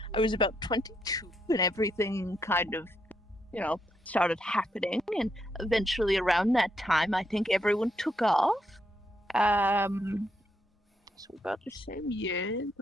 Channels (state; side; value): normal; both; correlation 0.78